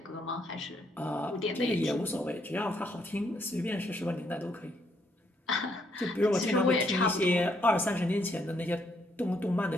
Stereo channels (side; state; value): both; normal; correlation 0.73